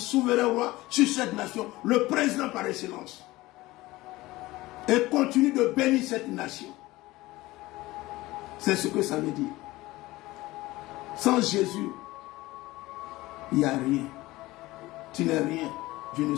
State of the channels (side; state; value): right; quieter; 19.0 dB